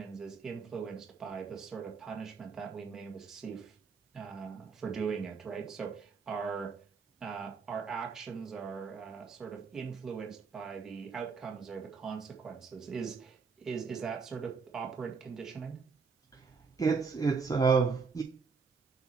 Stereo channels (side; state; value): left; quieter; 5.1 dB